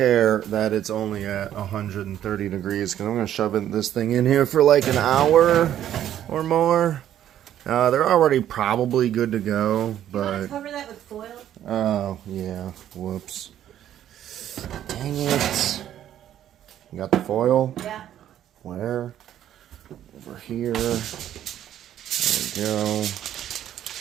that it's only at 130 degrees because I'm going to shove this thing in here for like an hour or more. They're already probably good to go, You want to but... cover that with foil? Oh, yeah. Whoops. Dang it. You got the foil? Yeah. Where? Over here. There we go.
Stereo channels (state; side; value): quieter; left; 11.2 dB